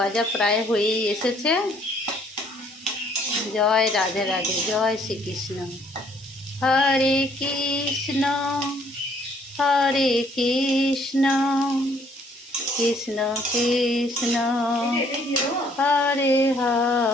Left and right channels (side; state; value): both; normal; correlation 0.63